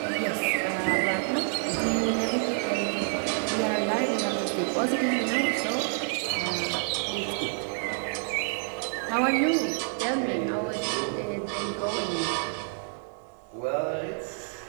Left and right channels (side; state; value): left; silent; 58 dB below the other